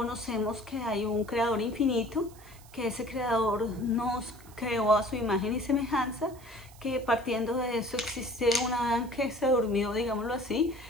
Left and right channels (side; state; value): right; noise; hiss, 24 dB below the sound